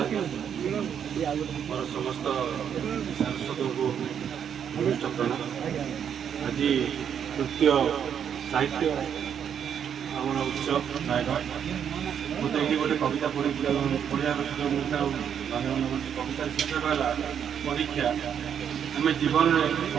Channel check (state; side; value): quieter; left; 8.4 dB